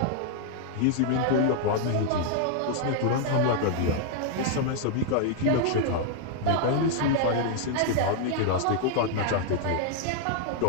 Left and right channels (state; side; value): different; both; correlation 0.00